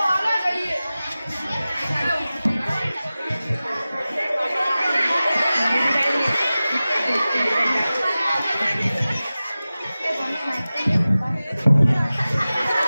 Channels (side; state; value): both; inverted; correlation -0.96